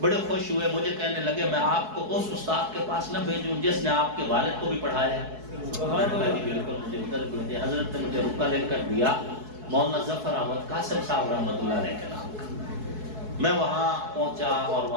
بڑے خوش ہوئے، مجھے کہنے لگے میں آپ کو اس استاد کے پاس نہ بھیجوں جس نے آپ کے والد کو بھی پڑھایا ہے؟ میں نے کہا جی بالکل مجھے ادھر بھیجیے۔ حضرت نے مجھے رکا لے کر دیا مولانا ظفر احمد قاسم صاحب رحمۃ اللہ علیہ کے نام کا۔ میں وہاں پہنچا اور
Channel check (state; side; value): late; left; 4.7 ms